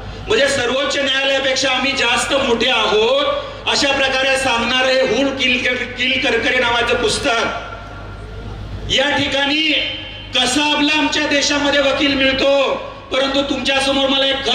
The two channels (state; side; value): identical; both; correlation 1.00